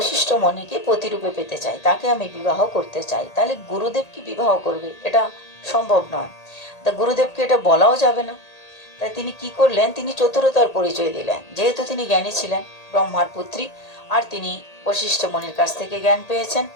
মুনিকে প্রতিরূপে পেতে চাই, তাকে আমি বিবাহ করতে চাই। তাহলে গুরুদেব কি বিবাহ করবে? এটা সম্ভব নয়। তা গুরুদেবকে এটা বলাও যাবে না। তাই তিনি কি করলেন, তিনি চতুরতার পরিচয় দিলেন। যেহেতু তিনি জ্ঞানী ছিলেন, ব্রহ্মার পুত্রী, আর তিনি বশিষ্ঠ মুনির কাছ থেকে জ্ঞান পেয়েছেন,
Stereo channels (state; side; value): late; right; 1.8 ms